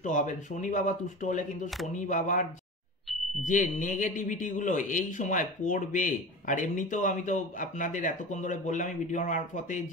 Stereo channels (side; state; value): both; normal; correlation 0.32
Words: হবেন। শনি বাবা তুষ্ট হলে কিন্তু শনি বাবার যে নেগেটিভিটিগুলো এই সময় পড়বে। আর এমনিতেও আমি তো আপনাদের এতক্ষণ ধরে বললাম এই ভিডিওর মারফতে